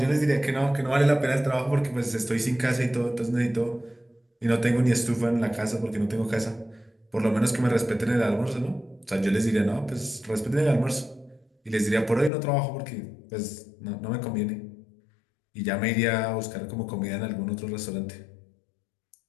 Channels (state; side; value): drops out; right; at 12.3 s